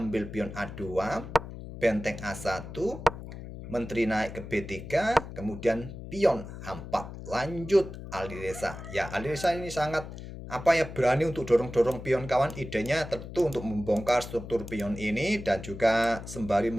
pion A2, benteng A1, menteri naik ke B3, kemudian pion H4. Lanjut Alireza. Ya, Alireza ini sangat berani untuk dorong-dorong pion kawan. Idenya tentu untuk membongkar struktur pion ini dan juga sembari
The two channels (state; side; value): noise; left; hum, 11 dB below the sound